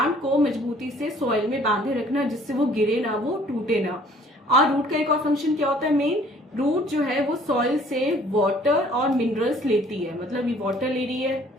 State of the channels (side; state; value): both; normal; correlation 0.56